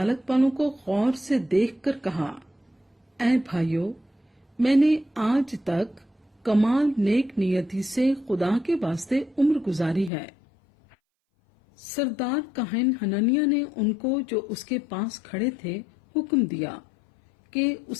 वालों को गौर से देखकर कहा, ऐ भाइयों, मैंने आज तक कमाल नेक नियति से खुदा के वास्ते उम्र गुजारी है। सरदार काहिन हननिया ने उनको, जो उसके पास खड़े थे, हुक्म दिया कि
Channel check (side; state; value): right; drops out; at 10.1 s